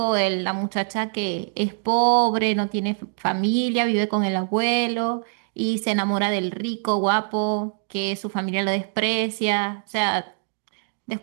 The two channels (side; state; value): left; silent; digital silence